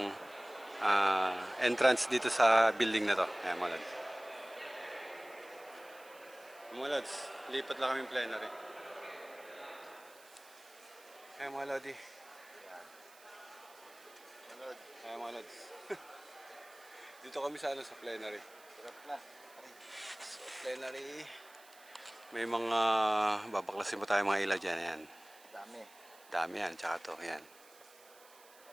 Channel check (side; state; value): right; noise; hiss, 23 dB below the sound